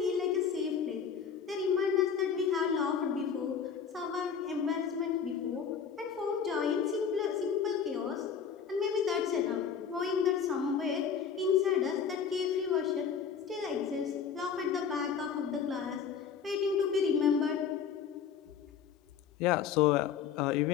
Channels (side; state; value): right; quieter; 7.1 dB